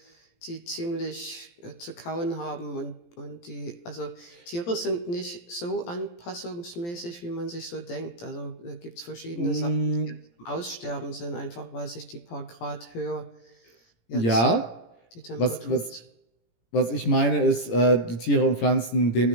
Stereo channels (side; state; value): right; late; 17 ms